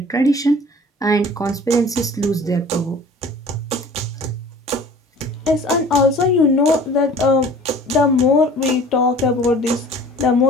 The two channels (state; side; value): normal; both; correlation 0.47